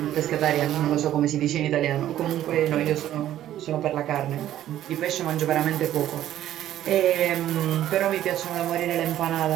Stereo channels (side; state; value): left; quieter; 12.4 dB